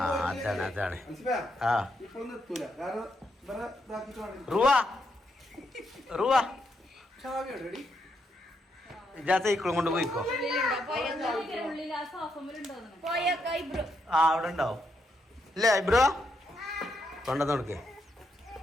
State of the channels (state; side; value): normal; both; correlation 0.79